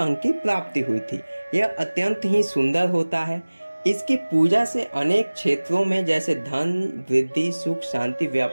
की प्राप्ति हुई थी। यह अत्यंत ही सुंदर होता है। इसकी पूजा से अनेक क्षेत्रों में जैसे धन वृद्धि, सुख शांति,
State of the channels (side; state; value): both; inverted; correlation -1.00